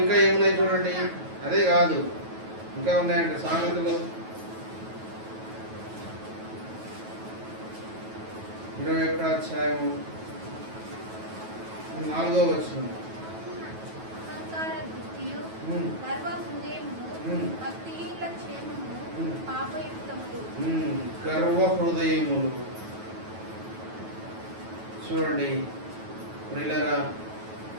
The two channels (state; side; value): late; left; 9.2 ms